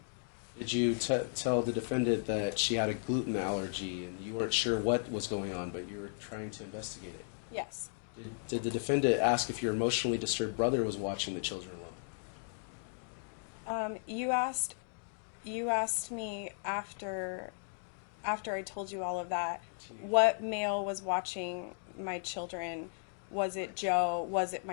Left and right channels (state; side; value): silent; right; digital silence